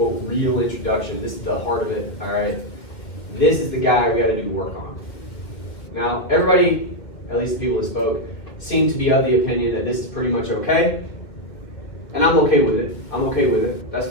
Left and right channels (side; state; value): right; late; 2.1 ms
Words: real introduction. This is the heart of it, all right? This is the guy we got to do work on. Now, everybody, at least the people that spoke, seem to be of the opinion that this is pretty much okay. And I'm okay with it. That's